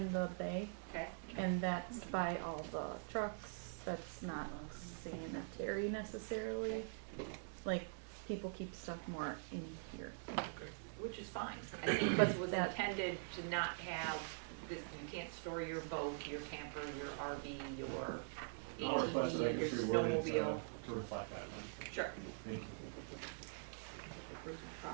the bay, Okay. and that's by all the trucks. That's not sanitary necessarily. Like, people keep stuff more in here. Which is fine. I think this was That- intended to not have, this, you can't store your boat, your camper, your RV, your I'll request that I ATV, your get reworded snowmobile. to reflect that then. Sure. Thank you.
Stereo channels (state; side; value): silent; left; digital silence